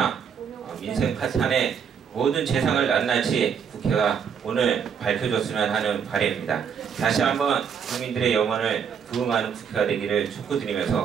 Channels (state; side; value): quieter; left; 7.2 dB